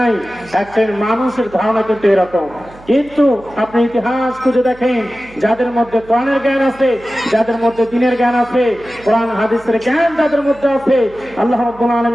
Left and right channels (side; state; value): right; noise; hum, 23 dB below the sound